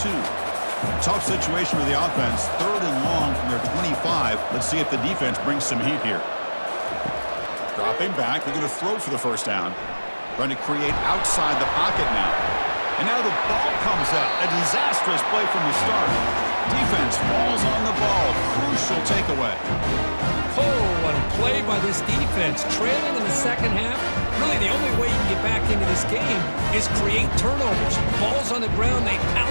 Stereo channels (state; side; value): inverted; both; correlation -1.00